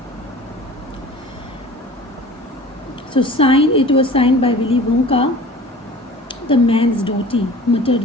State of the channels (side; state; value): both; normal; correlation 0.43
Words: So it was signed by Willy Wonka, the man's daughter,